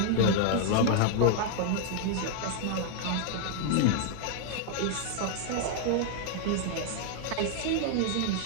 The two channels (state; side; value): different; both; correlation 0.00